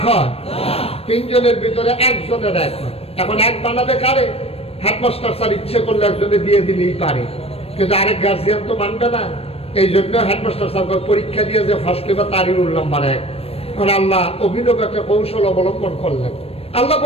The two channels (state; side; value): late; right; 0.28 ms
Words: হয়। 3 জনের ভিতরে 1 জনের 1 হয়। এখন 1 বানাবে কারে? হেডমাস্টার স্যার ইচ্ছে করলে একজনে দিয়ে দিলেই পারে, কিন্তু আরেক গার্জিয়ান তো মানবে না। এই জন্য হেডমাস্টার স্যার পরীক্ষা দিয়ে যে ফার্স্ট পেপার তারই রোল নাম্বার 1। এখন আল্লাহ অভিনব একটা কৌশল অবলম্বন করলেন। আল্লাহ